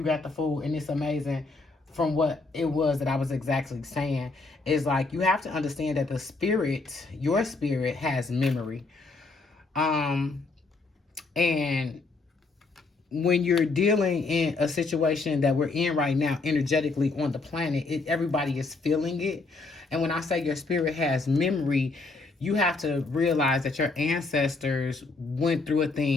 got the Fool, and it's amazing. From what it was that I was exactly saying, is like, you have to understand that the spirit, your spirit, has memory. And when you're dealing in a situation that we're in right now, energetically on the planet, everybody is feeling it. And when I say your spirit has memory, you have to realize that your ancestors went through a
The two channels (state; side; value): quieter; right; 3.7 dB